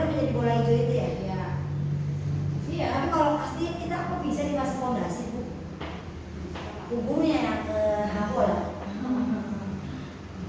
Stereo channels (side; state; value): both; identical; correlation 1.00